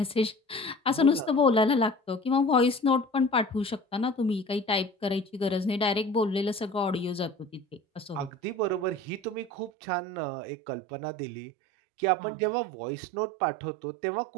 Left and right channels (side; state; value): left; drops out; at 9.7 s